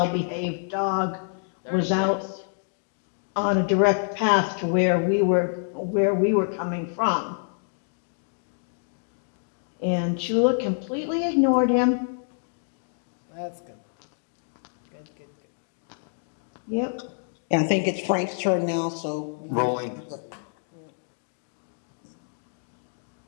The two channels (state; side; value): silent; right; digital silence